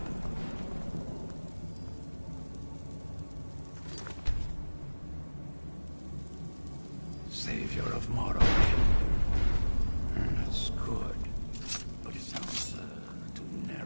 Savior of Morrowind. That's good, but it sounds too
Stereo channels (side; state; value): both; inverted; correlation -1.00